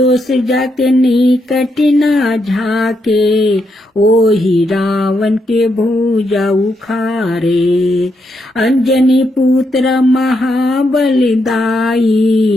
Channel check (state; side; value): normal; both; correlation 0.80